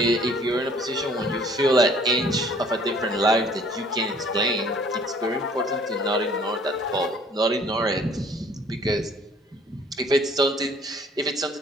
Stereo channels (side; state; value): both; normal; correlation 0.56